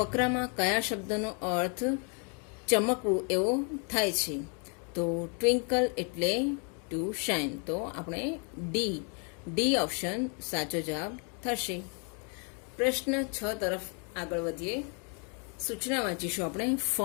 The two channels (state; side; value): quieter; right; 38.1 dB